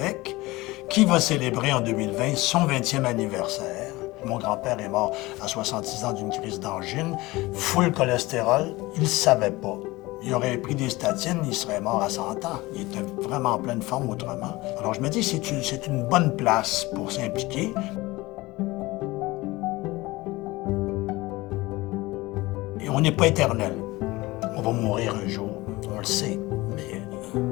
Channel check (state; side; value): quieter; right; 20.6 dB